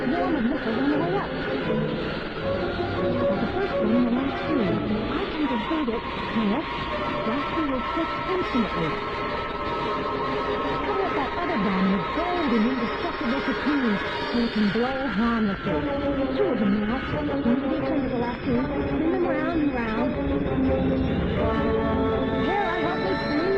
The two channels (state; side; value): identical; both; correlation 1.00